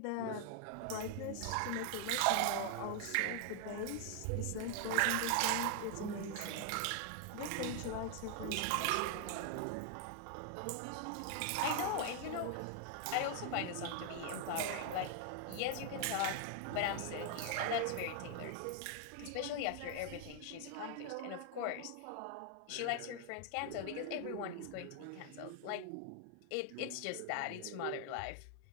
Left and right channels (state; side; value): different; both; correlation 0.00